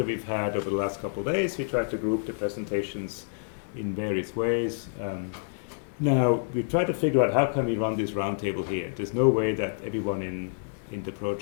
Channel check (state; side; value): silent; right; digital silence